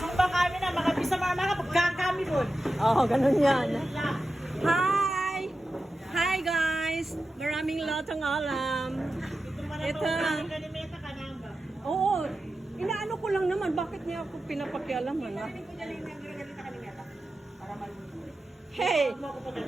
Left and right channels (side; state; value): both; normal; correlation 0.92